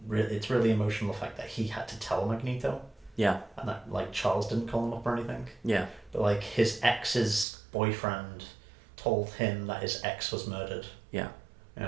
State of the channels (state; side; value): drops out; left; at 7.5 s